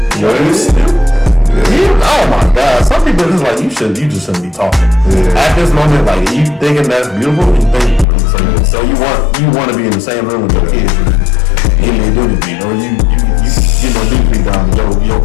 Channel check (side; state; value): right; drops out; at 8.1 s